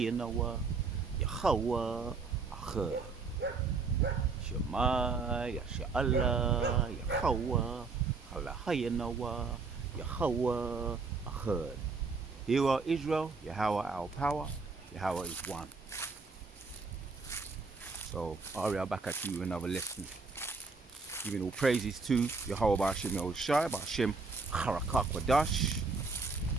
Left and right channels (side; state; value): left; quieter; 4.3 dB